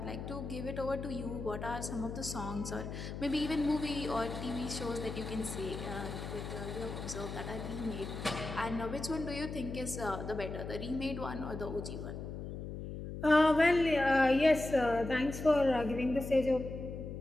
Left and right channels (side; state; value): left; noise; hum, 7 dB below the sound